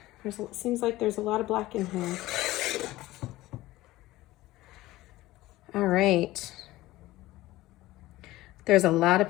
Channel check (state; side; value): quieter; right; 17.4 dB